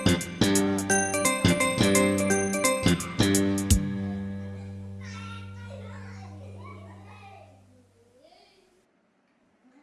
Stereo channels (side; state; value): both; identical; correlation 1.00